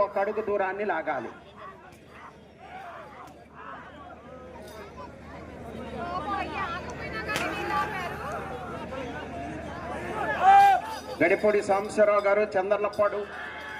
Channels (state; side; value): identical; both; correlation 1.00